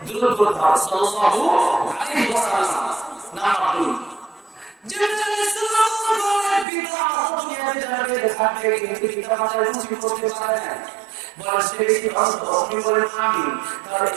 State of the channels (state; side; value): drops out; left; at 6.7 s